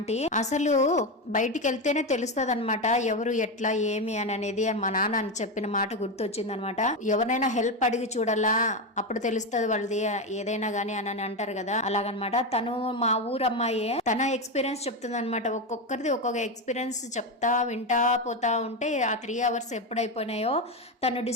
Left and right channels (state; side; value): normal; both; correlation 0.13